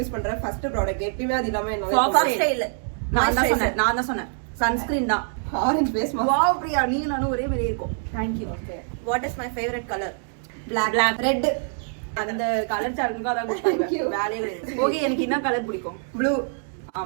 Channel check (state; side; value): silent; left; 62 dB below the other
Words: பண்ற ஃபர்ஸ்ட் ப்ராடக்ட் எப்பவுமே அது இல்லாம Fox ஸ்டைல். நான் தான் சொன்னேன் சன்ஸ்கிரீன் தான். Orange face mask. Wow Priya, நீங்க நானும் ஒரே மாதிரி இருக்கும். Thank you. Okay, what is my favourite colour? Black. Red. அந்த கலர் சார்ட்டுக்கு அதான் கொடுத்தாங்க. வேலையே கிடையாது. ஓகே, எனக்கு என்ன கலர் பிடிக்கும்? ப்ளூ.